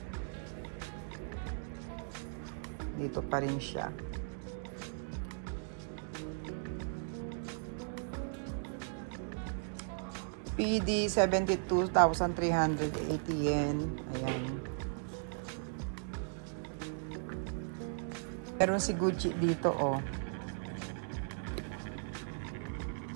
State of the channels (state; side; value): silent; left; digital silence